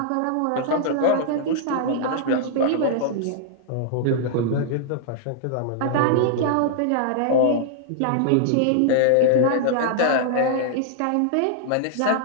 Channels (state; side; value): different; both; correlation -0.01